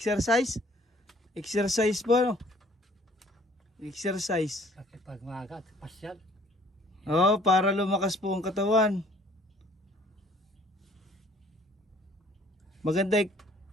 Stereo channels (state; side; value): normal; both; correlation 0.57